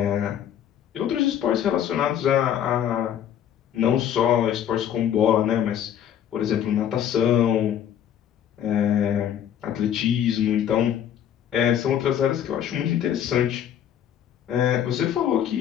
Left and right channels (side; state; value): right; quieter; 9.8 dB